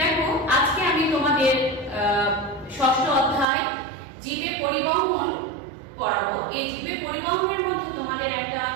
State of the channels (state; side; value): drops out; left; at 3.5 s